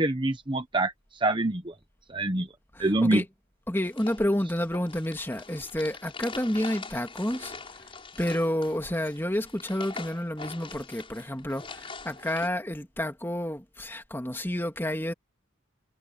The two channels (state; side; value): normal; both; correlation 0.75